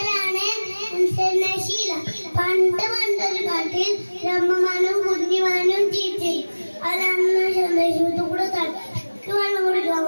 നശീല. പണ്ടൊരു കാട്ടിൽ രമ്മമാനും കുഞ്ഞിമാനും ജീവിച്ചു. അവരന്ന് സന്ദേശത്തു കൂടെ തലക്ക് വെള്ളം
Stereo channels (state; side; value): inverted; both; correlation -1.00